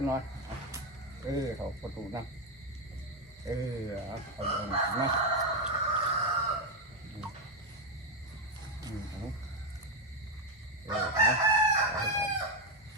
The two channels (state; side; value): normal; both; correlation 0.06